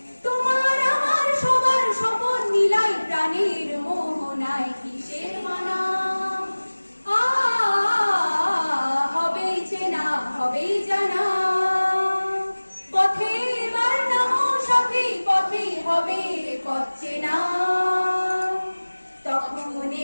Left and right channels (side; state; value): both; inverted; correlation -1.00